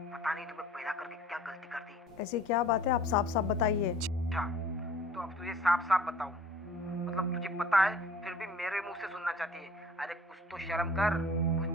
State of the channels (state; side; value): normal; both; correlation 0.49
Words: पता नहीं तुम्हें पैदा करके क्या गलती कर दी। ऐसी क्या बात है, आप साफ साफ बताइए। अच्छा, तो अब तुझे साफ साफ बताऊं, मतलब तुझे पता है फिर भी मेरे मुंह से सुनना चाहती है। अरे कुछ तो शर्म कर, कुछ